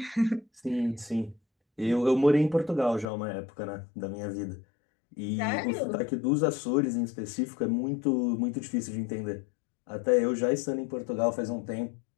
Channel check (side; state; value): right; drops out; at 3.1 s